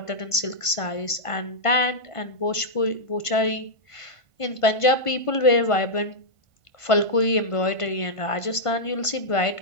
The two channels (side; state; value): right; late; 1.5 ms